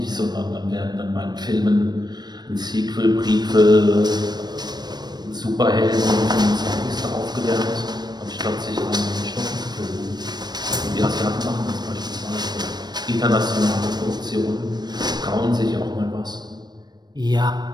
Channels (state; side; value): late; left; 0.20 ms